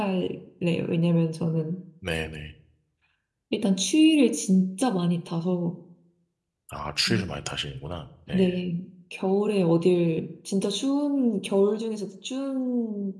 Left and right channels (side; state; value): both; identical; correlation 1.00